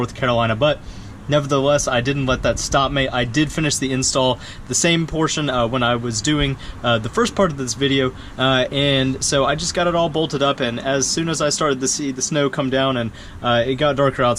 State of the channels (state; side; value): identical; both; correlation 1.00